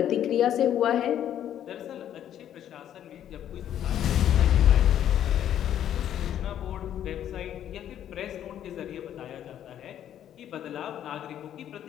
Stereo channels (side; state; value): right; quieter; 10.6 dB